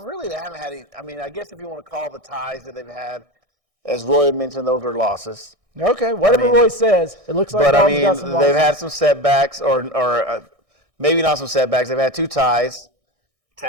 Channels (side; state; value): left; late; 1.6 ms